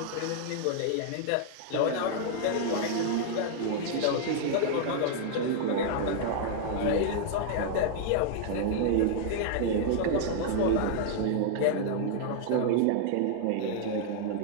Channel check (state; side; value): different; both; correlation -0.01